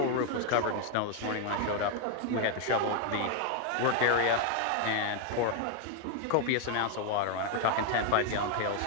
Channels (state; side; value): different; both; correlation 0.00